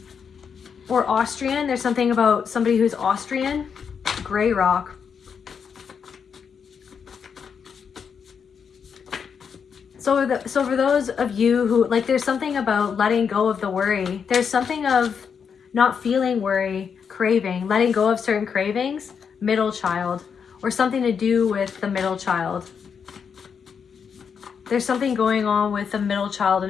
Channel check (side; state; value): right; quieter; 6.7 dB